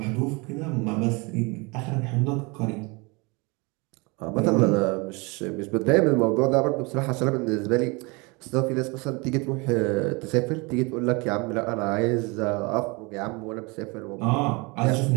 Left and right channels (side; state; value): left; quieter; 28.0 dB